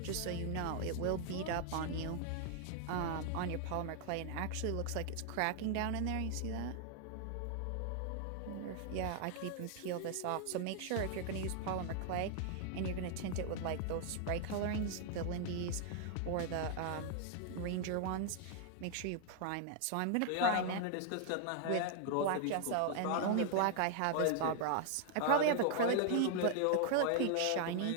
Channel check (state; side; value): different; both; correlation 0.00